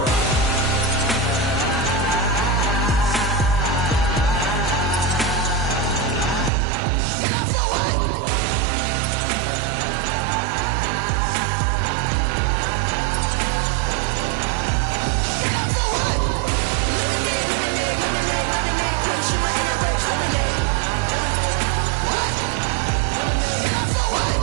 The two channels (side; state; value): left; drops out; at 6.5 s